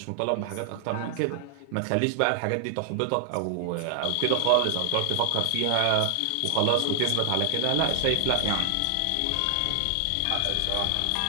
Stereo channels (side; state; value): both; different; correlation 0.00